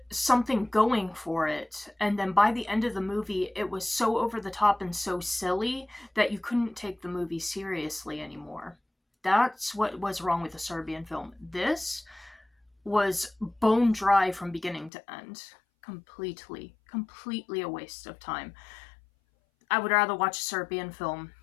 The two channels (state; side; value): drops out; right; at 14.9 s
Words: something going for it. And then by the end of the movie, it was so over the top and so silly that you couldn't take the movie seriously anymore. That's what was wrong with the Serbian film. This was bone dry from beginning to end. Completely a waste of time. I would rather watch a Serbian film